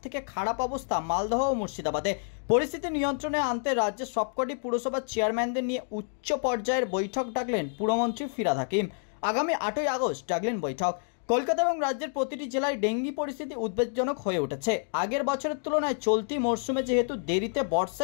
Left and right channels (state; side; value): silent; right; 59 dB below the other